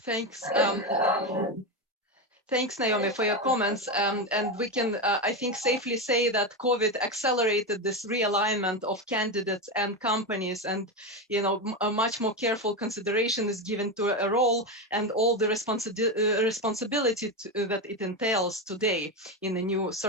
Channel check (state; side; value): normal; both; correlation 0.14